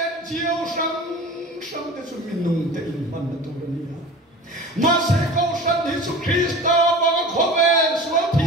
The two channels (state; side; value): normal; both; correlation 0.37